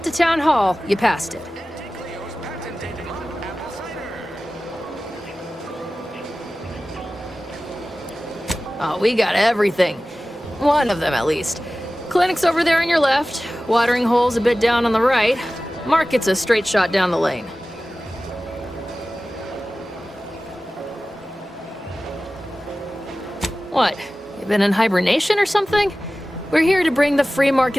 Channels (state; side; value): normal; both; correlation 0.96